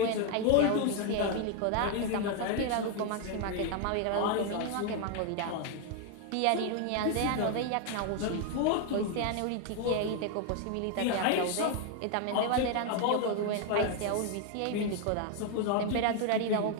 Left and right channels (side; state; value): both; different; correlation 0.01